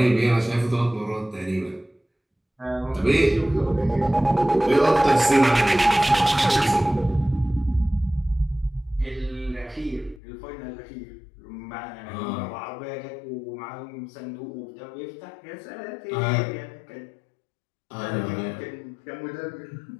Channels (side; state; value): right; drops out; at 10.2 s